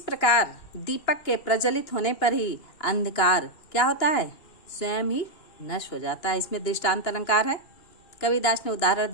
प्रकार दीपक के प्रज्वलित होने पर ही अंधकार क्या होता है, स्वयं ही नष्ट हो जाता है। इसमें दृष्टांत अलंकार है। कबीरदास ने उदाहरण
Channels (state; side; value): late; right; 2.8 ms